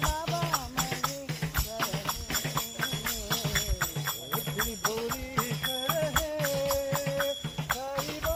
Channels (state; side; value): identical; both; correlation 1.00